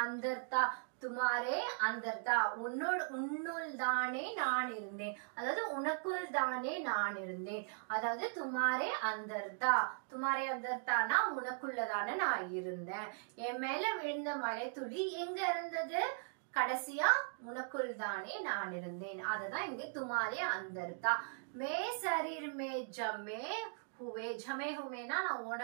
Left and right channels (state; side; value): silent; left; digital silence